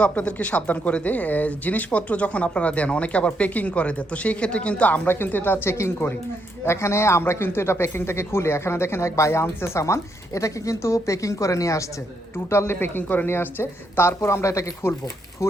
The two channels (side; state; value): both; normal; correlation 0.77